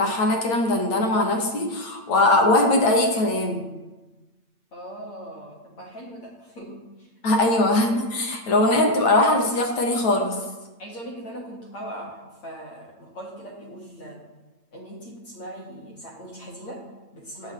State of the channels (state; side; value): late; right; 8.8 ms